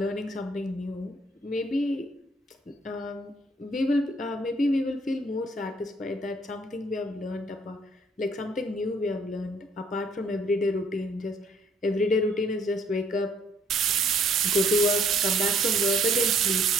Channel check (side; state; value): both; normal; correlation 0.63